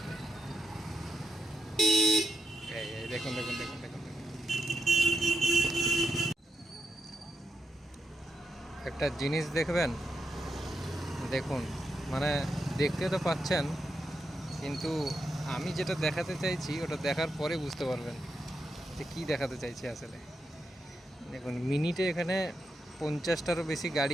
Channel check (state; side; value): normal; both; correlation 0.85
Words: এই দেখুন দেখুন দেখুন দেখুন দেখুন। একটা জিনিস দেখবেন, দেখুন, মানে দেখতে তো পাচ্ছেন, কিন্তু আমি যেটা দেখাতে চাইছি ওটা দেখার পরে বুঝতে পারবেন যে কী দেখাতে চাইছি আসলে। দেখুন, মিনিটে এখানে 50টারও বেশি